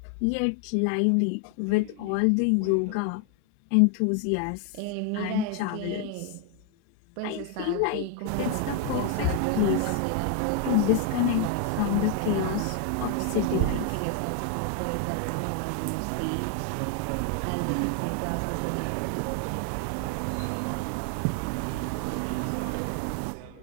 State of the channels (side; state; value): both; different; correlation 0.00